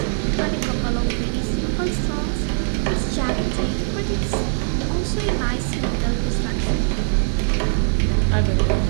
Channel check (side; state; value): left; silent; digital silence